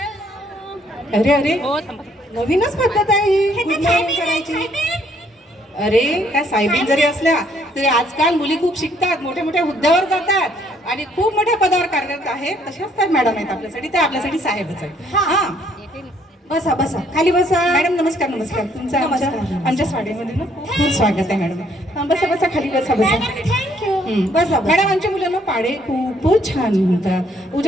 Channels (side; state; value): both; normal; correlation 0.66